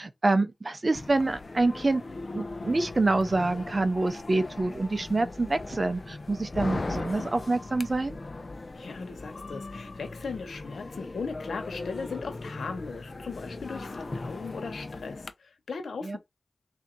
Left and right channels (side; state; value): both; normal; correlation 0.96